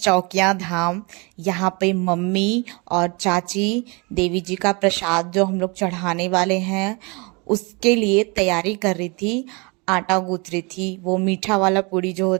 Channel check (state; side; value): quieter; left; 29.2 dB